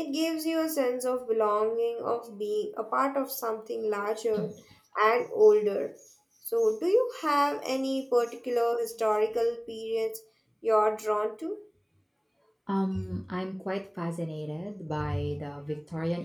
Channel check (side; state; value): both; identical; correlation 1.00